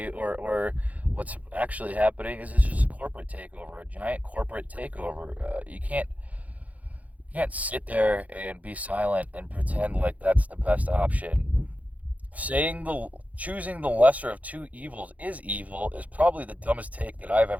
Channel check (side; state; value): left; late; 0.072 ms